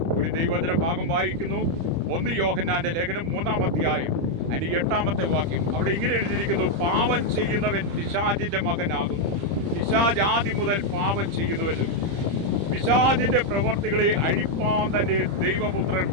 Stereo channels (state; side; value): late; left; 30 ms